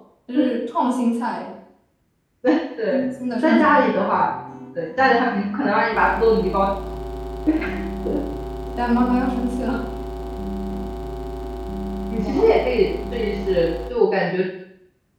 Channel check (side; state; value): both; identical; correlation 1.00